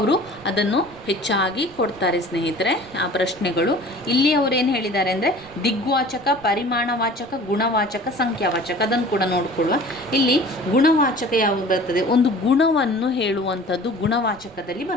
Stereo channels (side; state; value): right; noise; rumble, 24 dB below the sound